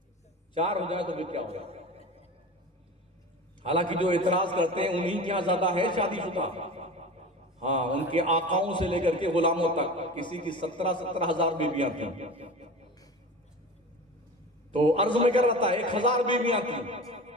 4 ہو جائے تو پھر کیا ہوگا. حالانکہ جو اعتراض کرتے ہیں انہیں کیا زیادہ ہے شادی شدہ. ہاں ان کے آقاؤں سے لے کر کے غلاموں تک کسی کی 17 ہزار بیویاں تھیں. تو عرض میں کر رہا تھا 1000 بیویاں تھیں.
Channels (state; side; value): normal; both; correlation 0.33